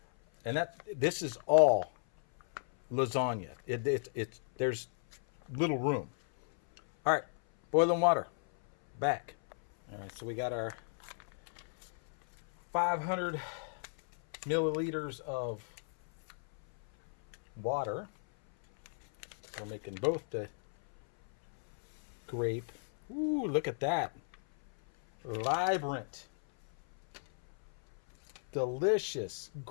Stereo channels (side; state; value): right; silent; 55 dB below the other